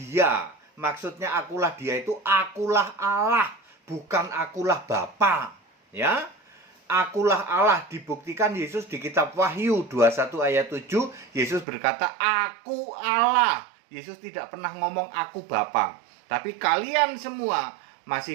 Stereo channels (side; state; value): left; drops out; at 11.7 s